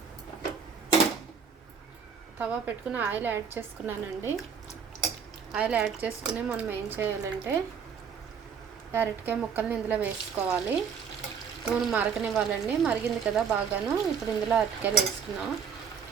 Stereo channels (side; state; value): left; quieter; 6.7 dB